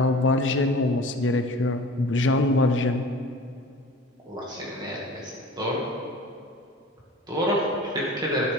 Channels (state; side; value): normal; both; correlation 0.40